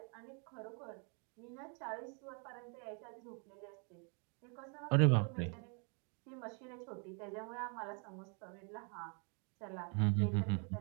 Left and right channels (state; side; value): quieter; left; 38.1 dB